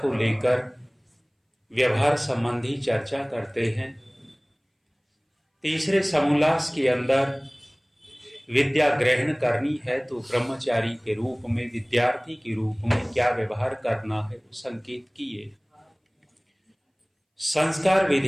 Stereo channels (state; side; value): identical; both; correlation 1.00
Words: लेकर व्यवहार संबंधी चर्चा करते हैं। तीसरे समोल्लास के अंदर विद्या ग्रहण करनी है तो ब्रह्मचारी के रूप में, विद्यार्थी के रूप में क्या व्यवहार करना है वो संकेत किए। संस्कार